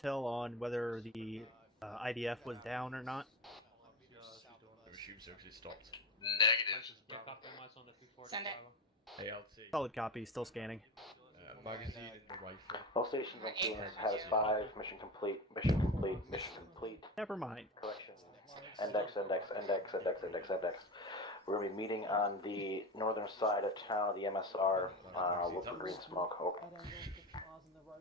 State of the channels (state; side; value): normal; both; correlation 0.24